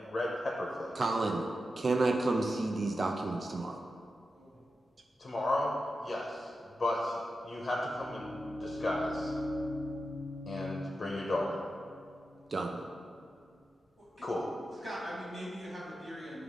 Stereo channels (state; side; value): normal; both; correlation 0.90